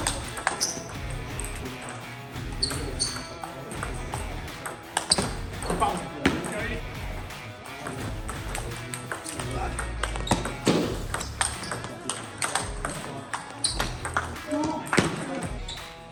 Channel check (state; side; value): identical; both; correlation 1.00